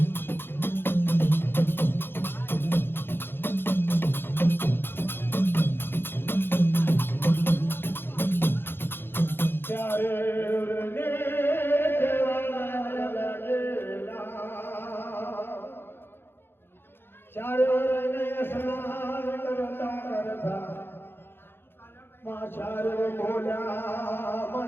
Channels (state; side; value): late; right; 0.10 ms